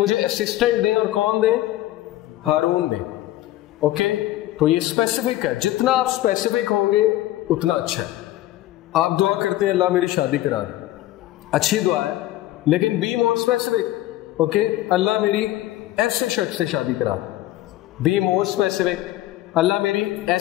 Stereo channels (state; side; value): quieter; right; 15.3 dB